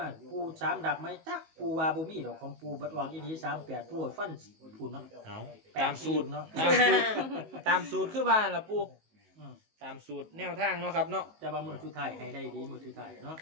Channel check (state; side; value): late; left; 19 ms